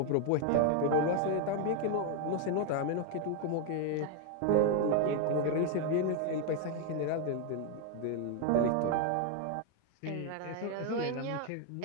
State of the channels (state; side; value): different; both; correlation 0.01